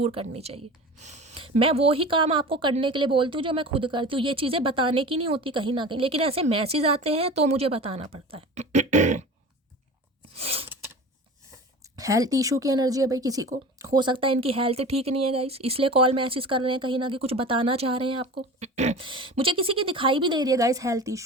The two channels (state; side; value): normal; both; correlation 0.35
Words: करनी चाहिए। मैं वो ही काम आपको करने के लिए बोलती हूँ जो मैं खुद करती हूँ। ये चीज़ें बताने की नहीं होती कहीं ना कहीं, लेकिन ऐसे मैसेज आते हैं तो मुझे बताना पड़ता है। हेल्थ इशू की एनर्जी है भाई, किसी को हो सकता है इनकी हेल्थ ठीक नहीं है गाइस, इसलिए कॉल मैसेज कर रहे हैं, कहीं ना कहीं कुछ बताना चाह रहे हैं आपको। मुझे किसी की दिखाई भी दे रही है गाइस हेल्थ